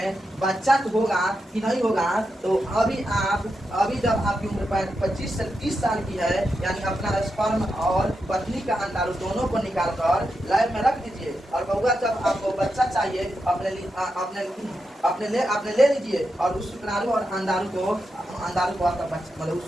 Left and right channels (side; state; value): both; normal; correlation 0.87